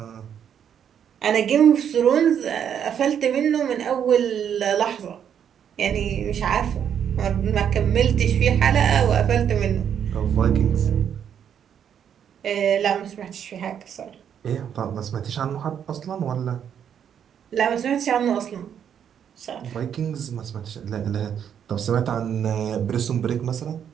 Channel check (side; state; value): left; quieter; 8.6 dB